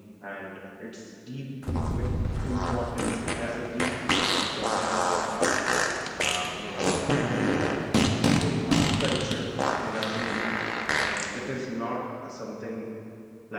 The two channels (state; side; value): identical; both; correlation 1.00